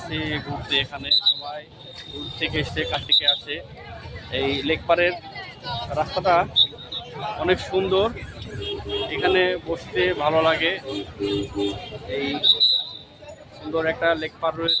ঘুরতে, এখানে সবাই দূর থেকে এসছে, কাছ থেকে আসে। এই লেকপাড়ের রাস্তাটা অনেক সুন্দর, এখানে বসতে ভালো লাগে। এই সুন্দর একটা লেকপাড়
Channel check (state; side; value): identical; both; correlation 1.00